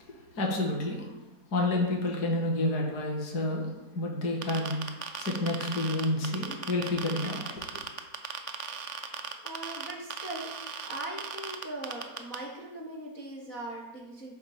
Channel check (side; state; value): right; late; 4.3 ms